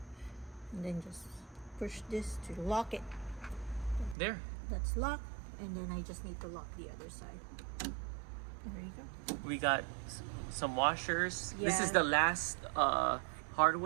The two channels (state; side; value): drops out; left; at 4.2 s